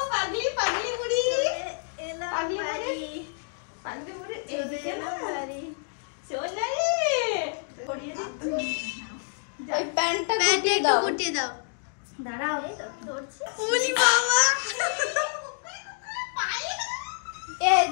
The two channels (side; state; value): right; silent; digital silence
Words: পাগলি পাগলি বুড়ি পাগলি পাগলি বুড়ি এদিকে না সোনা রে পরিয়ে দিচ্ছি। ওই প্যান্টটা একটু গুটিয়ে দাও। দাঁড়াও ধরছি। ওলি বাবা এ